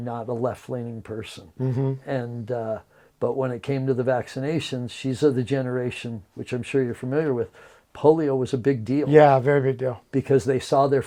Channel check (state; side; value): identical; both; correlation 1.00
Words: a left-leaning person. And but when it came to the vaccinations, she's of the generation, which I'm sure you're familiar with, polio was a big deal. Yeah, very big deal. Because they saw their